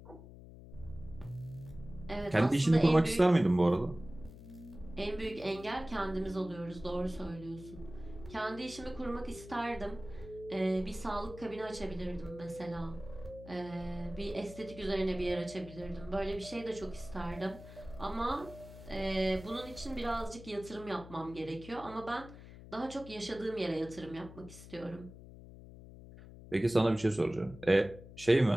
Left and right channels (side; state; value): left; noise; hum, 16 dB below the sound